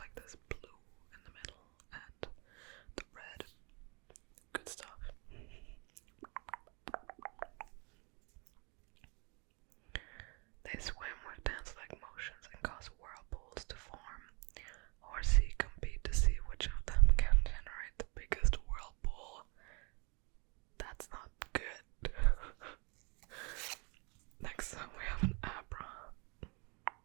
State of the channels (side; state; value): left; quieter; 31.2 dB